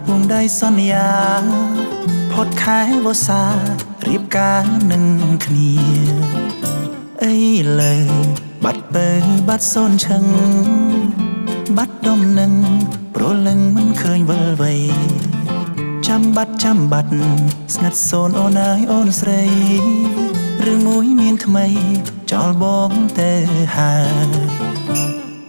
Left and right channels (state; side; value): inverted; both; correlation -1.00